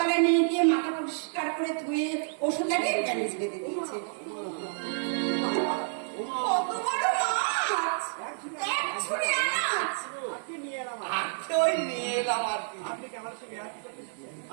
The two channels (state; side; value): silent; left; 58 dB below the other